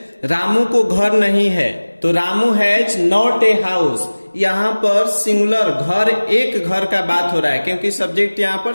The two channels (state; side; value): inverted; both; correlation -1.00